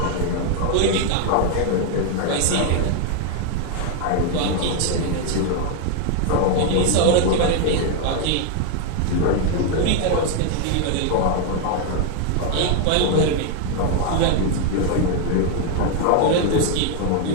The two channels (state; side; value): different; both; correlation 0.00